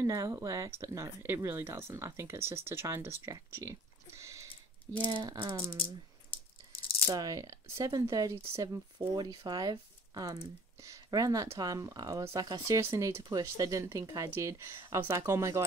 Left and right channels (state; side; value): normal; both; correlation 0.51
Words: it works. But no, it really doesn't. I think it's just to try and distract you. Yeah, so 7:30 to 7:45, around that time, I was like, I seriously need to push. They didn't think I did. I was like, oh my